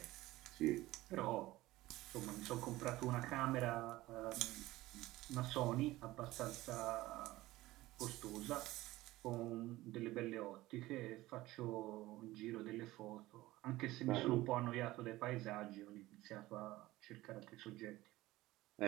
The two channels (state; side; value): quieter; left; 17.8 dB